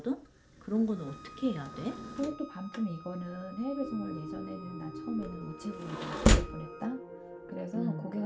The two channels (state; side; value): identical; both; correlation 1.00